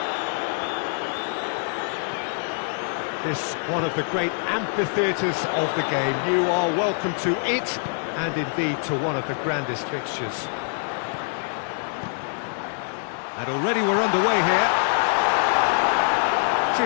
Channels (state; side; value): silent; right; 57 dB below the other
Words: This one of the great amphitheatres of the game. You are welcome to it, and indeed to one of the grandest fixtures. And already we're underway here.